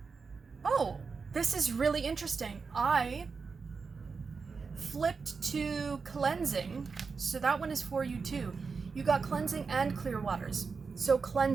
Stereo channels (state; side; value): quieter; left; 5.0 dB